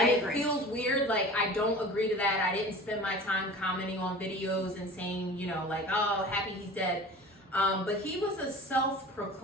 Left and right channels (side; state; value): both; normal; correlation 0.39